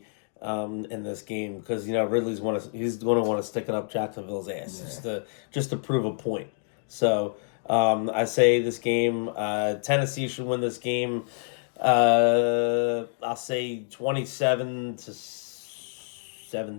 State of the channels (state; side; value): silent; right; digital silence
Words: in this game because Ridley's he's going to want to stick it up Jacksonville's ass just to prove a point. So I say this game, Tennessee should win this game. I'll say